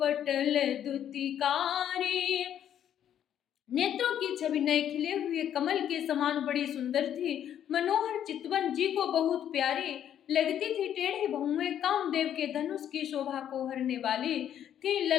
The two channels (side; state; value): right; quieter; 10.1 dB